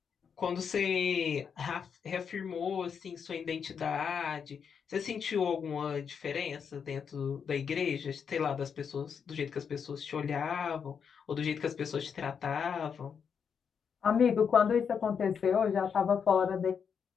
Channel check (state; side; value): quieter; right; 6.8 dB